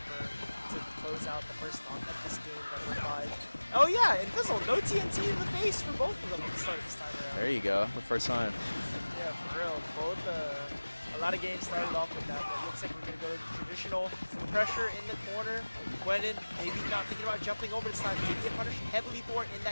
to close out the first stock of this game, number 5. Oh yeah, Invisible, no TNT in the face for both of them at the start this time around. There you go, the first time. Yeah, for real. Both, a lot of games started off with that, but it looks like we're going to go to the traditional pressure in the corner. Gwendon maybe not thinking about jumping over this time. Did get punished heavily for it in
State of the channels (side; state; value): both; inverted; correlation -1.00